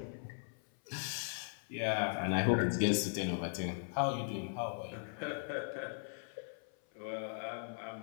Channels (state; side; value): silent; right; 52 dB below the other